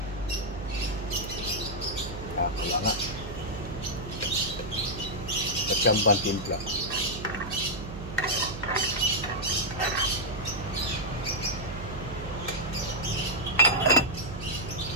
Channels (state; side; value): noise; right; hum, 10 dB below the sound